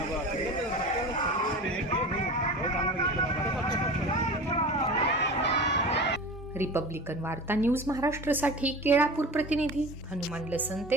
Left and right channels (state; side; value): normal; both; correlation 0.34